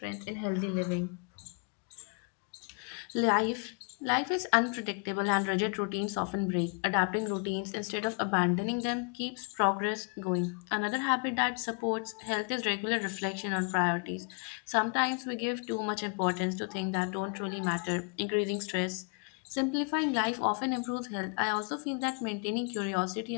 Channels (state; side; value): quieter; right; 36.7 dB